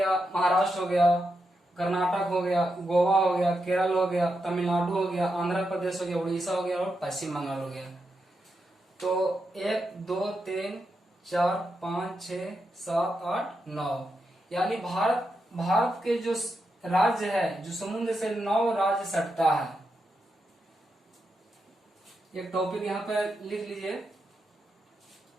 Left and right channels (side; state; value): both; normal; correlation 0.85